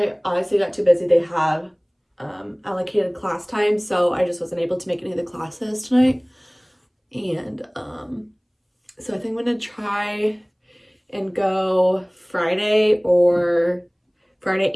Obviously got too busy. They have allocated class time, so I just wasn't able to make any of the classes tonight. And so I think I'm gonna try and go Friday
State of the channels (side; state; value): both; identical; correlation 1.00